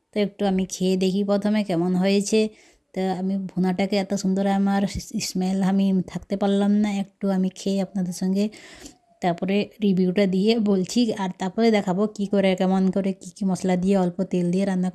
তো একটু আমি খেয়ে দেখি প্রথমে কেমন হয়েছে। তো আমি ভুনাটাকে এত সুন্দর, আমার স্মেল আমি থাকতে পারলাম না, একটু আমি খেয়ে আপনাদের সঙ্গে তারপরে রিভিউটা দিয়ে বলছি। আর তারপরে দেখাবো কি করে, কেমন করে, কি মশলা দিয়ে, অল্প তেল দিয়ে রান্না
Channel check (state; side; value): identical; both; correlation 1.00